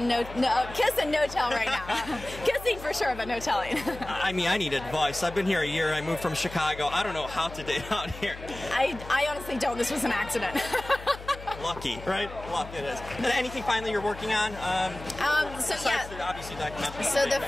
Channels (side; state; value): left; noise; hum, 14 dB below the sound